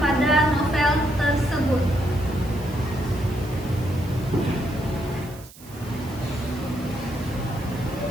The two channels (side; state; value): right; noise; hiss, 20 dB below the sound